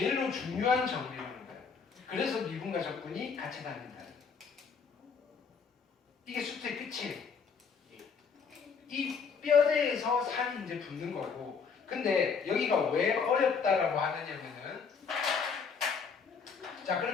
중요한 정리라는 거예요. 그래서 미분과 적분이 같이 다닌다. 이게 수트의 끝이에요. 이 뼈대에서 살이 이제 붙는 거고, 근데 여기가 왜 어렵다라고 하느냐면은, 자,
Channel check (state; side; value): quieter; right; 5.8 dB